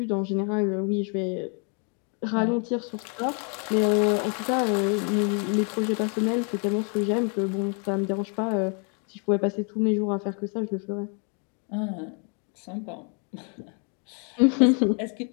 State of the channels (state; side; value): quieter; right; 38.5 dB